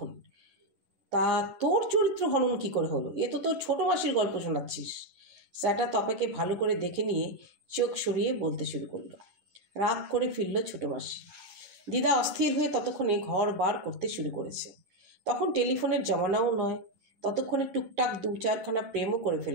তা তোর চরিত্র হনন কি করে হলো? এ তো তোর ছোটো মাসির গল্প শোনাচ্ছিস। স্যাটা তপাকে ভালো করে দেখে নিয়ে চোখ সরিয়ে বলতে শুরু করলো। রাগ করে ফিরল ছোটো মাসি। দিদা অস্থির হয়ে ততক্ষণে ঘর বার করতে শুরু করেছে। তখন টেলিফোনের জমানাও নয়। ততক্ষণে টুকটাক 2-4খানা প্রেমও করে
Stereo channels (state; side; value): late; left; 11 ms